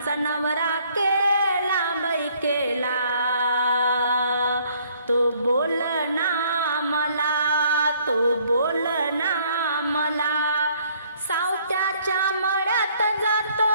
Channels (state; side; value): inverted; both; correlation -0.63